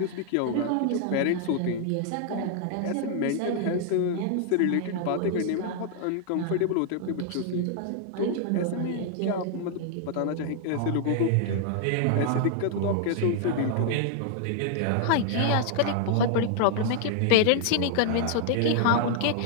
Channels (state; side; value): different; both; correlation 0.00